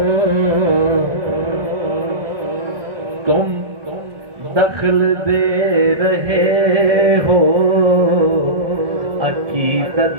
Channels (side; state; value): left; late; 1.7 ms